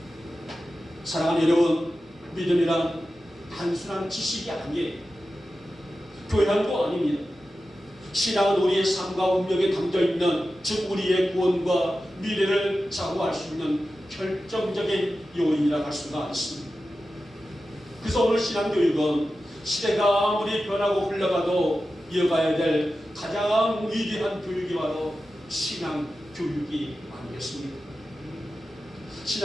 사랑하는 여러분, 믿음이란 단순한 지식이 아니에요. 교양도 아닙니다. 신앙은 우리의 삶과 운명에 담겨있는, 즉 우리의 구원과 미래를 좌우할 수 있는 결정적인 요인이라 할 수가 있습니다. 그래서 오늘 신앙교육은 시대가 아무리 변하고 흘러가도 이어가야 될 가장 위대한 교육이 바로 신앙교육이 아니겠습니까?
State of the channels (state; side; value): normal; both; correlation 0.93